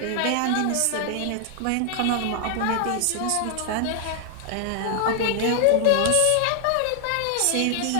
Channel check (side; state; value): both; different; correlation 0.00